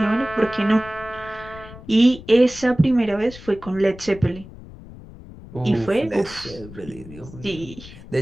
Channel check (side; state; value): left; noise; rumble, 17 dB below the sound